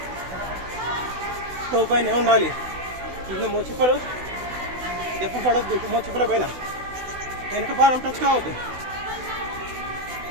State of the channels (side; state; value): left; late; 16 ms